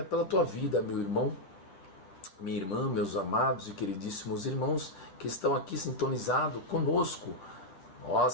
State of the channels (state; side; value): late; right; 10 ms